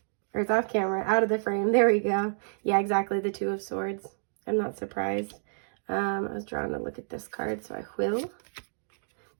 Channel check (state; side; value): silent; left; digital silence